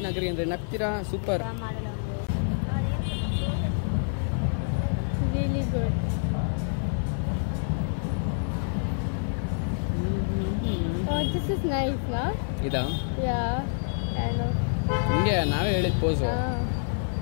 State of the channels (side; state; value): right; silent; 56 dB below the other